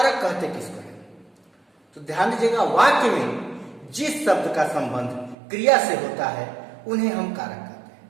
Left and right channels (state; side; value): drops out; left; at 5.4 s